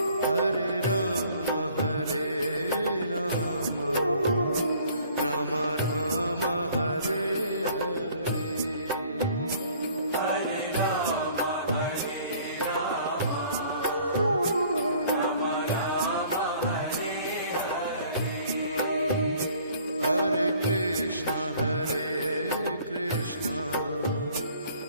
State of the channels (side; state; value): both; inverted; correlation -0.55